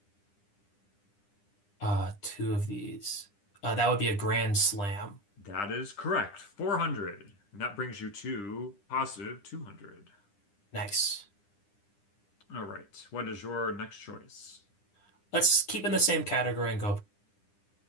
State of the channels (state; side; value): late; right; 9.9 ms